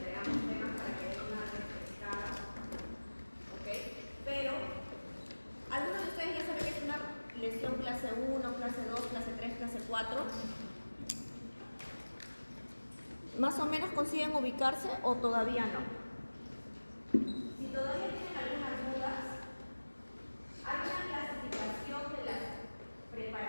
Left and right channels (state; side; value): inverted; both; correlation -1.00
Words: ambos temas para que den una refrescada. ¿Ok? Pero, algunos de ustedes ya saben que es una lección clase 1, clase 2, clase 3, clase 4. ¿Más o menos consiguen ubicarse o todavía no? Si todavía tienen algunas dudas, hay una clasificación de las